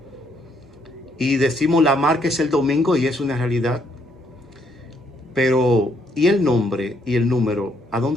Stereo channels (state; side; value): normal; both; correlation 0.71